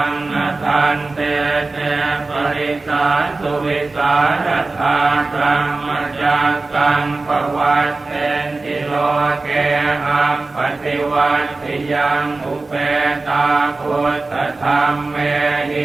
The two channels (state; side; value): quieter; left; 3.4 dB